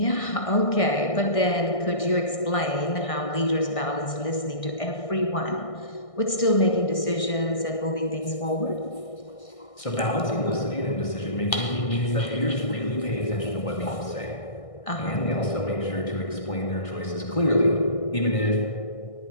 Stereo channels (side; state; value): right; late; 1.6 ms